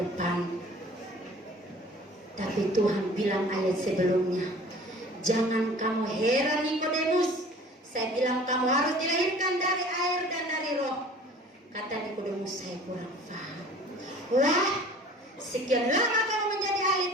Tapi Tuhan bilang ayat sebelumnya, jangan kamu heran Nikodemus. Saya bilang kamu harus dilahirkan dari air dan dari roh. Kata Nikodemus, saya kurang paham. Wah, sekian lama kamu menjadi ahli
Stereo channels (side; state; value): both; normal; correlation 0.47